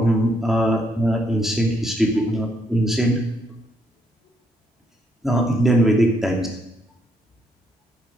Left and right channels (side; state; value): both; normal; correlation 0.74